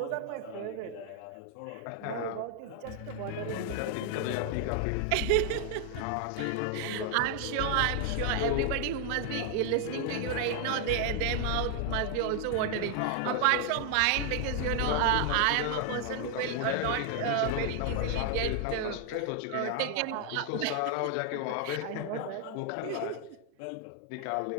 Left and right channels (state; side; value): different; both; correlation 0.00